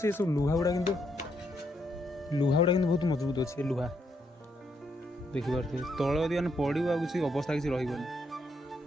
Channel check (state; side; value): normal; both; correlation 0.76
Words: सब लुहा गुड़ा किंतु लुहा गुड़ा बहुत मजबूत अच्छे लुहा देखिपे तल यदि मैंने पड़ो आ किसी अवस्था किसी रही